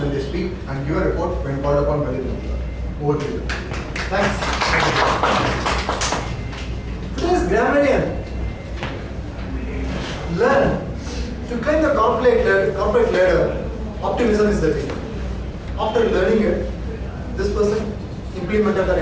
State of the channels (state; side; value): identical; both; correlation 1.00